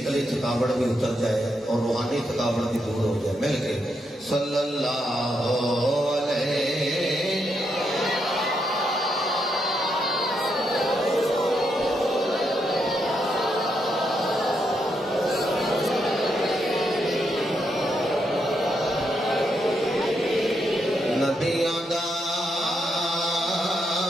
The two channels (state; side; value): normal; both; correlation 0.80